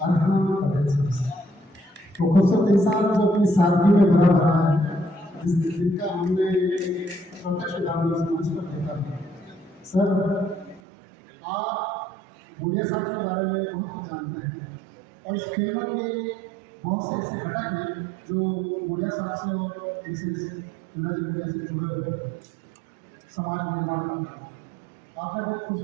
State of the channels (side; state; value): left; drops out; at 10.8 s